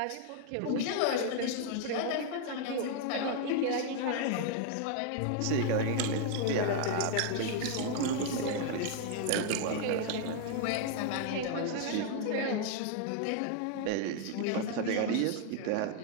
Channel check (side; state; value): both; different; correlation 0.00